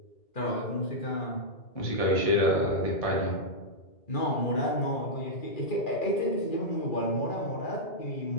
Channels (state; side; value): late; right; 2.4 ms